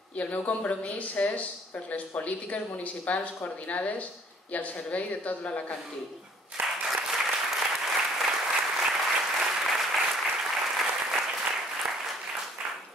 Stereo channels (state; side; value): normal; both; correlation 0.57